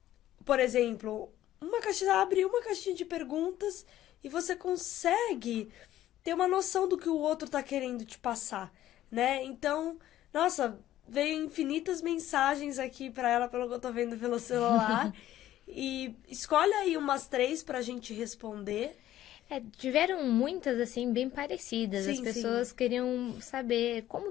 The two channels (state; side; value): quieter; right; 13.3 dB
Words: por exemplo, abre uma caixinha de perguntas e você consegue ter uma noção do que o outro tá querendo te passar, né? Então, nossa, veio infinitas mensagens aqui pra ela, pelo que eu tô vendo pelo celular. E escolhe aí umas 3 pra gente responder. Tiveram muitas, assim, bem parecidas. As Sim, pessoas sim. queriam saber como